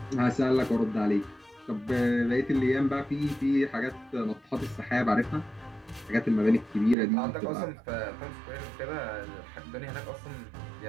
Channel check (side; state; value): left; drops out; at 7.0 s